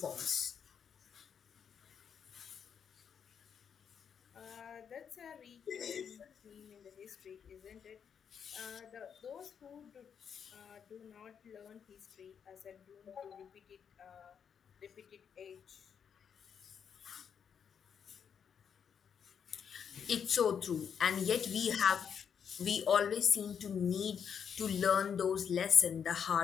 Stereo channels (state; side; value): quieter; right; 7.5 dB